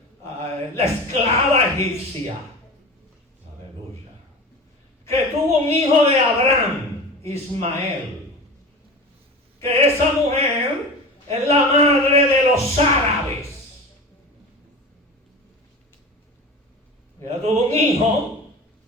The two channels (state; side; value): normal; both; correlation 0.32